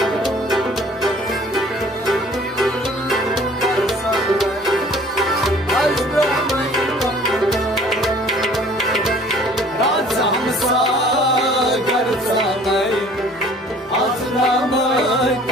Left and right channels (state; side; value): normal; both; correlation 0.52